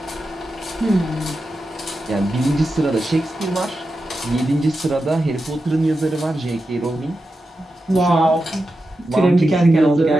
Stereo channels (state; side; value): normal; both; correlation 0.90